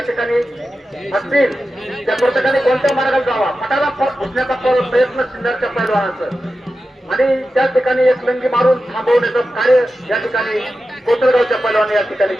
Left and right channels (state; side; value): normal; both; correlation 0.92